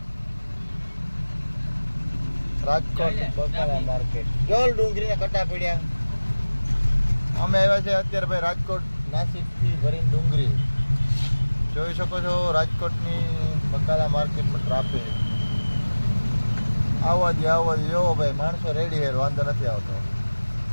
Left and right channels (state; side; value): inverted; both; correlation -1.00